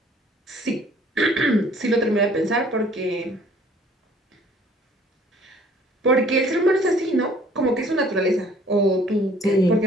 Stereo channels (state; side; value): normal; both; correlation 0.56